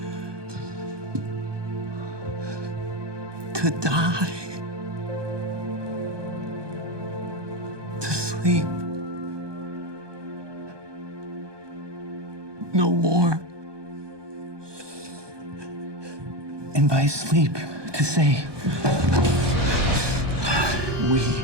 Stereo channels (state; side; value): late; left; 1.2 ms